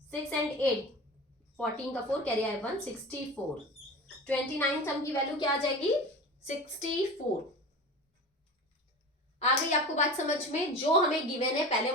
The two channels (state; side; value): normal; both; correlation 0.32